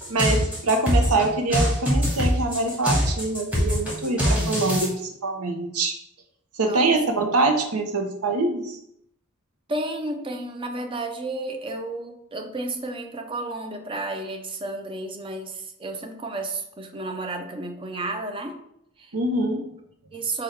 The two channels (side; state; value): both; normal; correlation 0.34